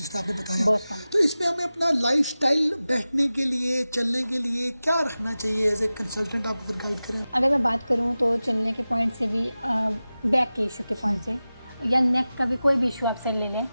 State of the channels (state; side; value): inverted; both; correlation -0.96